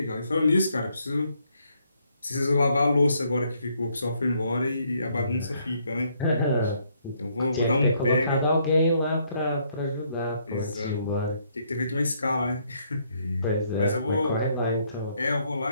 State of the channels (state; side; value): inverted; both; correlation -0.71